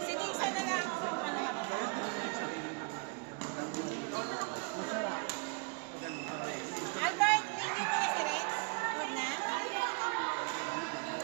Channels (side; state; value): left; quieter; 33.0 dB